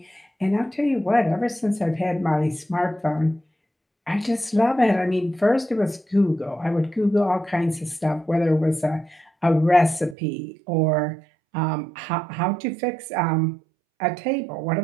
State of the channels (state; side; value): drops out; left; at 10.2 s